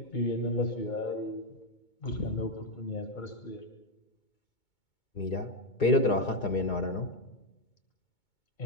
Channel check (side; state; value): right; late; 2.2 ms